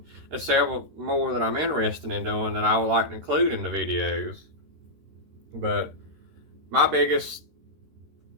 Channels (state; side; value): late; left; 13 ms